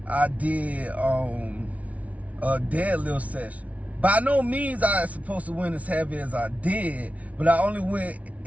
I did a deadlift session. By no means I was supposed to win as heavy as I did, but I only went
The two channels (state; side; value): late; left; 0.067 ms